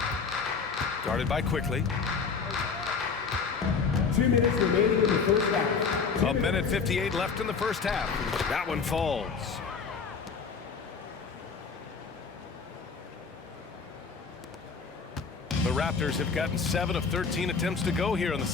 Guarded by Quickly. 2 minutes remaining in the first half. A minute 58 left in the first half. That one falls. The Raptors have gotten 7 of 13 attempts to go here in the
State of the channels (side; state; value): right; quieter; 5.4 dB